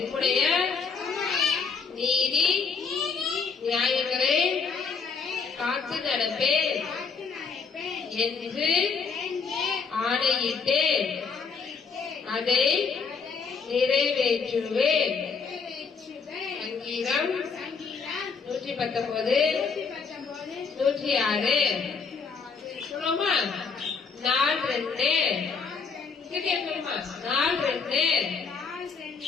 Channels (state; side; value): quieter; right; 5.4 dB